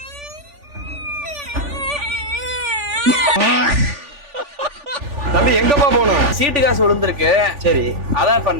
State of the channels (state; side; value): late; left; 3.4 ms